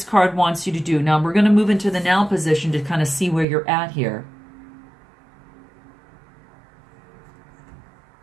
card wants you to do. Now we're going to move into the now position to kind of see where you're at here.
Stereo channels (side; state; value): left; drops out; at 3.5 s